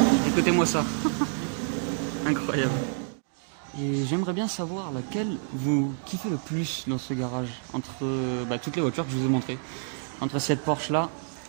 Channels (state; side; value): silent; left; 59 dB below the other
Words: Écoutez-moi ça. Incroyable. Et j'aimerais bien savoir laquelle vous kiffez le plus dans ce garage, entre toutes les voitures que je vous ai montrées. Entre cette Porsche là,